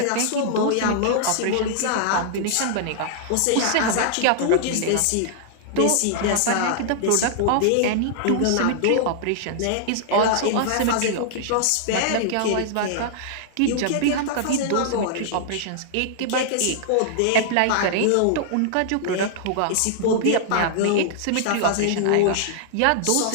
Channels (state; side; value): different; both; correlation -0.01